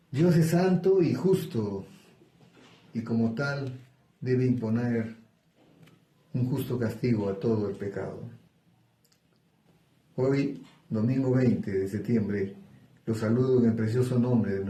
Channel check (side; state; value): both; identical; correlation 1.00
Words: Dios es santo y justo, y como tal debe imponer un justo castigo a todo el pecado. Hoy, domingo 20 de septiembre, los saludo en el precioso nombre de